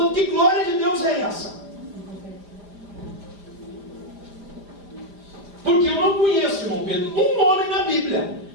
que glória de Deus é essa? Porque eu não conheço, irmão Pedro, um homem na Bíblia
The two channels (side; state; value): left; late; 5.0 ms